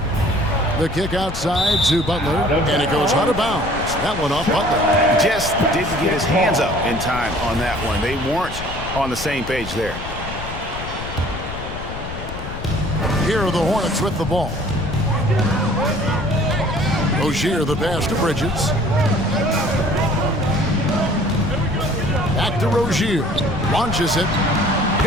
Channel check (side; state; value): left; noise; rumble, 9 dB below the sound